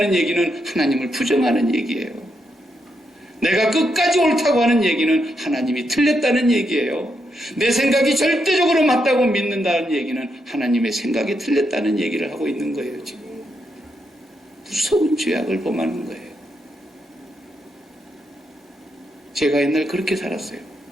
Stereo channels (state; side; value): normal; both; correlation 0.81